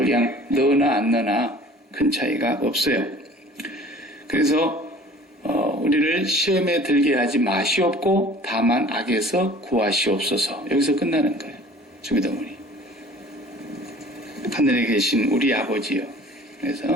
그냥 넣으나 안 넣으나 큰 차이가 없어요. 그래서 우리를 시험에 들게 하지 마시옵고 다만 악에서 구하시옵소서. 여기서 끝나는 거예요. 주기도문이. 하늘에 계신 우리 아버지요.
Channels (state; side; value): normal; both; correlation 0.48